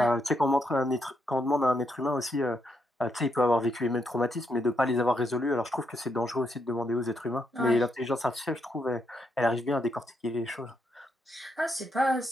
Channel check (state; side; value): normal; both; correlation 0.79